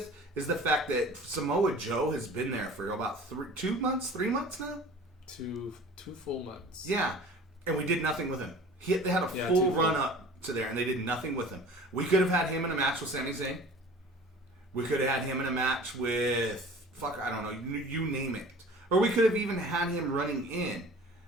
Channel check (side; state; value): both; normal; correlation 0.44